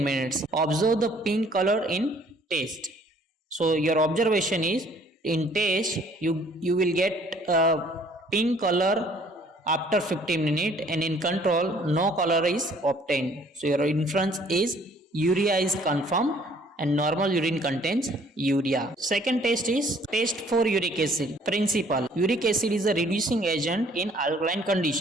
minutes. Observe the pink color in test. So your observation is in test you will get pink color after 15 minutes, and in control no color is obtained. So your inference is urea is confirmed and normal urine contains urea. Second test is test for uric acid. Principle: uric acid is a reducing agent in alkaline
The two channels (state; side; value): normal; both; correlation 0.59